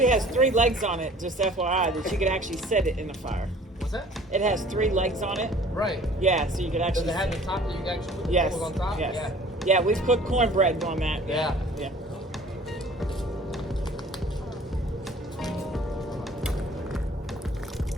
has 3 legs on it, just FYI, that you could actually set it in the fire. What's that? It has 3 legs on it. Right. Yeah, so you could actually. Does it have the top that you can actually put the Yes. coals on top? Yes. Yeah. Yeah, we've cooked cornbread on that. Yeah. Yeah.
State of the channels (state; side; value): normal; both; correlation 0.50